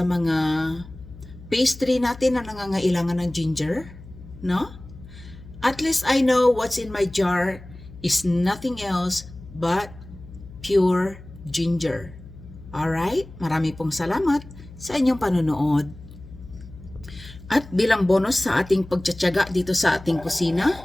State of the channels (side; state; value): left; noise; hum, 18 dB below the sound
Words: mga pastry natin na nangangailangan ng ginger, no? At least I know what's in my jar is nothing else but pure ginger. Alright? Marami pong salamat sa inyong panonood. At bilang bonus sa ating pagtsatsaga dito sa ating kusina,